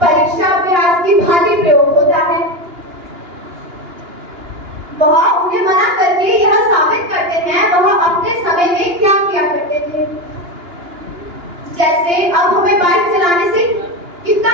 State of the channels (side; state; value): left; late; 2.9 ms